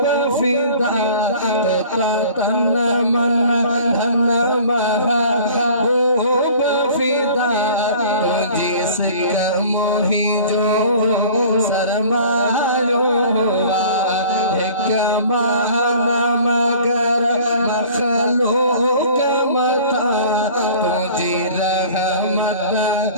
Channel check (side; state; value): both; inverted; correlation -0.47